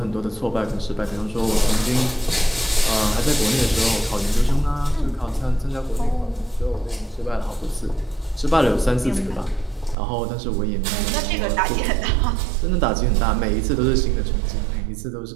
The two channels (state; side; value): drops out; left; at 10.0 s